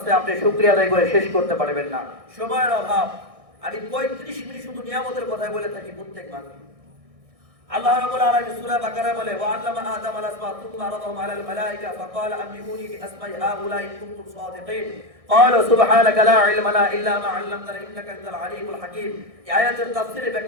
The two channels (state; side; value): late; left; 1.6 ms